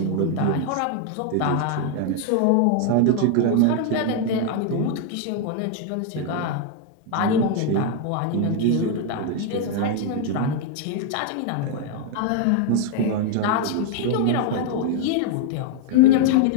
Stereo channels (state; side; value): different; both; correlation 0.00